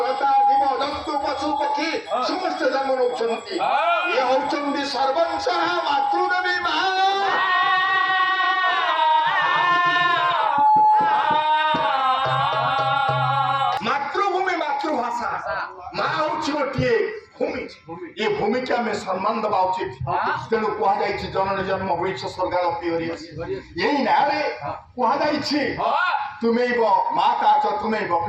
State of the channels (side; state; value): both; identical; correlation 1.00